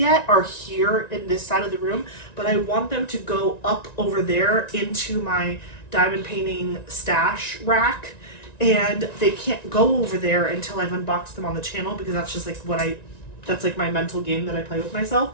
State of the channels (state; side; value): late; right; 1.9 ms